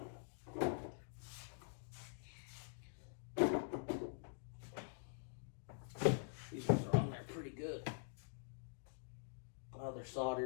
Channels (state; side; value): silent; right; digital silence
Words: These ones are on there pretty good. Oh, they're